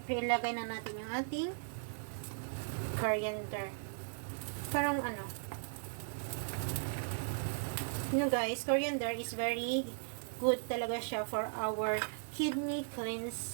ilagay na natin yung ating coriander. Parang, guys, coriander is very good talaga siya for our kidney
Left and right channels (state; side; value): silent; left; digital silence